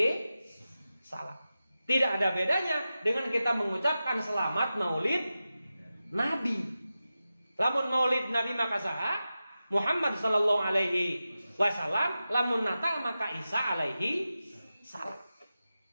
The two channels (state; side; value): inverted; both; correlation -0.93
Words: salam. Tidak ada bedanya dengan kita mengucapkan selamat Maulid Nabi. Lamun Maulid Nabi maka saha Muhammad sallallahu alaihi wasallam, lamun Natal maka Isa alaihi salam.